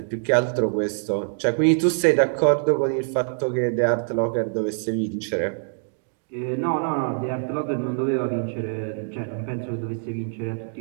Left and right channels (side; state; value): left; silent; digital silence